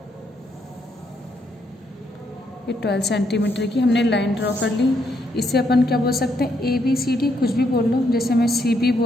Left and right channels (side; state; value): both; normal; correlation 0.75